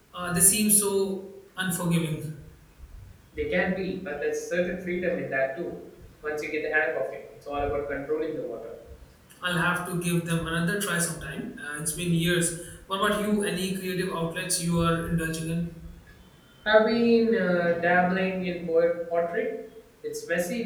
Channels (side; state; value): both; identical; correlation 1.00